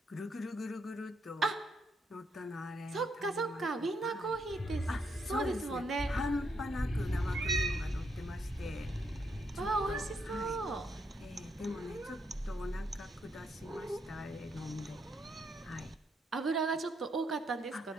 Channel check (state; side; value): normal; both; correlation 0.76